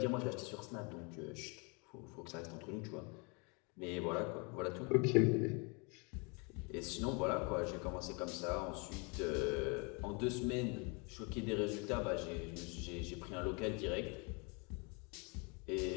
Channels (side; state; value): right; quieter; 32.0 dB